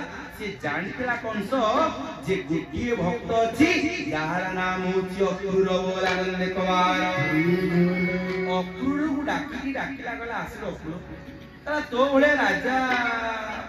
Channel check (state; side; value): identical; both; correlation 1.00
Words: से जानतेला कंस जे गोटिए भक्त अछि यार नाम होछि अक्रूर बोला नंद कवार अक्रूर को डाकिला गला आसे अक्रूर तला तो भले राजा